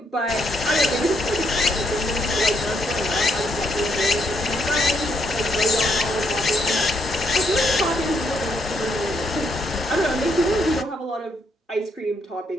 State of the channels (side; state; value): both; normal; correlation 0.75